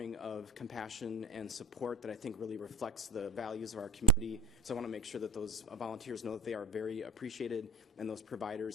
of compassion and support that I think really reflects the values of our community. So I want to make sure that those volunteers know that they are very appreciated, and those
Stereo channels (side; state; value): both; normal; correlation 0.34